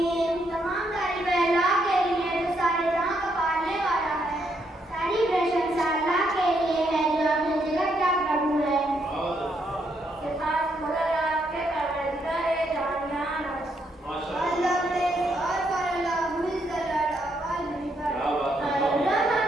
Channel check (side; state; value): both; normal; correlation 0.76